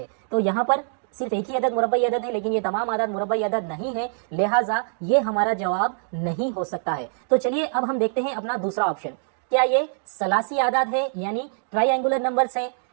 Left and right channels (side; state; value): left; silent; digital silence